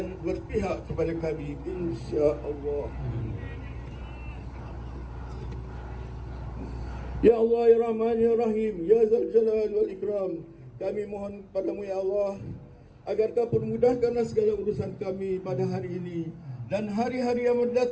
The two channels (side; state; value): both; identical; correlation 1.00